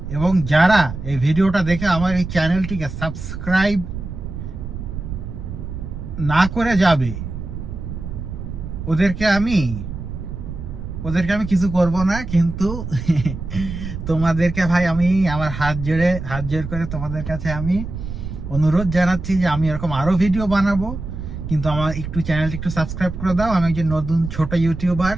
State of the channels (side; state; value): right; noise; rumble, 8 dB below the sound